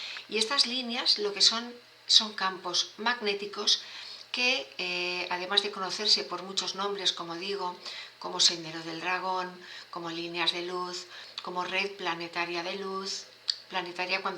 Y estas líneas lo que son campos magnéticos que, además de conocerse por muchos nombres, como digo, como Sendero del Dragón, como líneas de luz, como red planetaria de luz, planetaria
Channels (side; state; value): both; identical; correlation 1.00